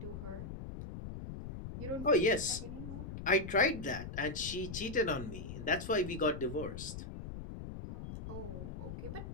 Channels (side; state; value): left; noise; rumble, 8 dB below the sound